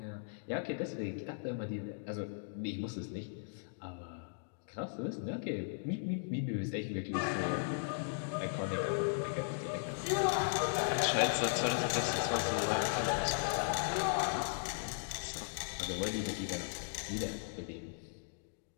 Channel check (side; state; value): right; silent; digital silence